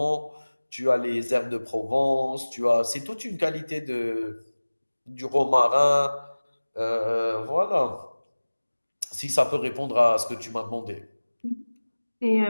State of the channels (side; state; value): both; inverted; correlation -1.00